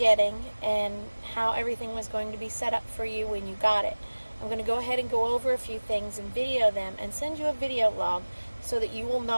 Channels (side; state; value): both; inverted; correlation -1.00